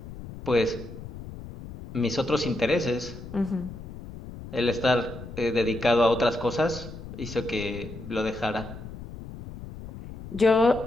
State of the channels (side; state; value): left; noise; rumble, 13 dB below the sound